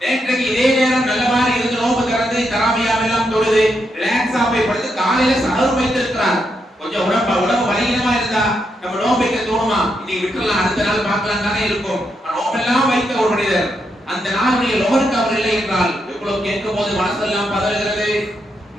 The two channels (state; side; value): normal; both; correlation 0.81